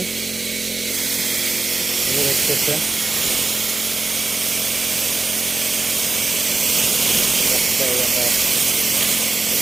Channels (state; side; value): quieter; left; 3.6 dB